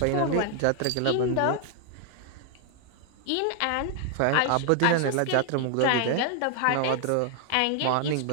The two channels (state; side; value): different; both; correlation 0.00